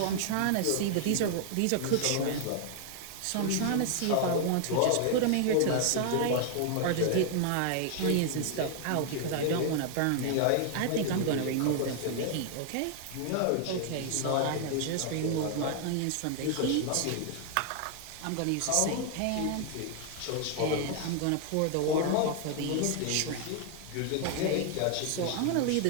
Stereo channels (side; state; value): both; different; correlation 0.00